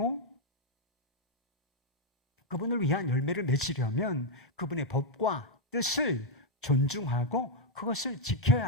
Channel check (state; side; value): normal; both; correlation -0.03